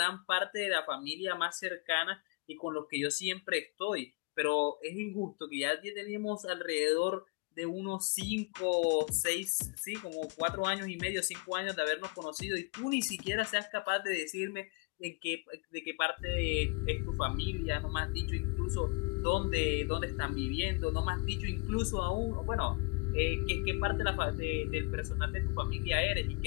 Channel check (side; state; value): right; quieter; 29.9 dB